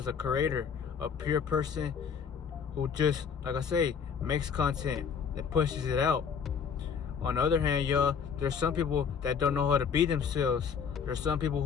a creator, a pure person who just, like I say, makes content and pushes it out. On the other hand, y'all, there's some people that don't know how to be themselves. There's some people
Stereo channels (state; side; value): quieter; right; 6.7 dB